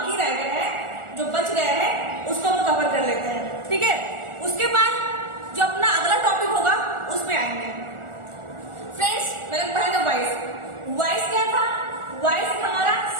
रह गए हैं, जो बच गए हैं, उसको हम कवर कर लेते हैं, ठीक है। उसके बाद जो अपना अगला टॉपिक होगा उसमें आएंगे। फ्रेंड्स, मैंने पढ़ा था वॉइस। वॉइस क्या था? वॉइस हमारा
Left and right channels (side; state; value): left; late; 1.4 ms